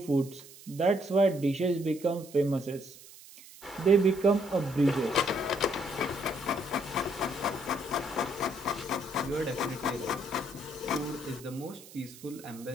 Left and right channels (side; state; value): right; noise; hiss, 19 dB below the sound